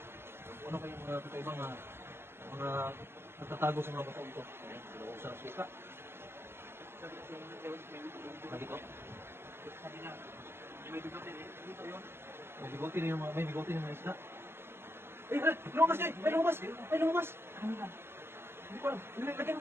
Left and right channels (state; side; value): late; left; 0.12 ms